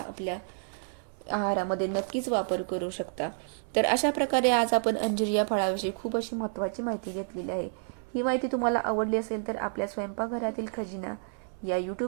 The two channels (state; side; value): silent; left; 58 dB below the other